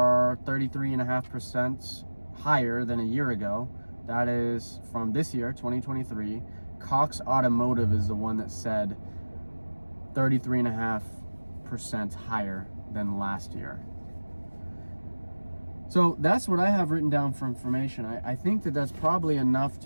33.5% higher than a year ago. That is from this year, 2023. Cox Automotive is the one that said 33.5% higher than last year. So that's what I have written down for information. I think that that's probably enough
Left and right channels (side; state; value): both; inverted; correlation -1.00